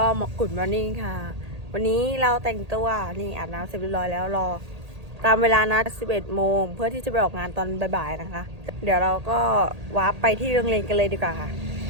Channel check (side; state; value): left; late; 1.8 ms